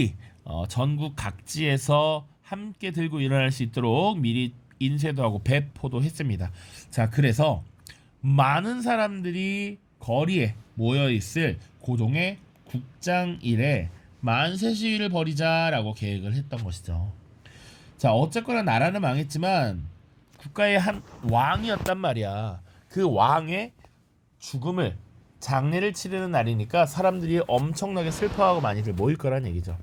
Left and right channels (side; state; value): both; identical; correlation 1.00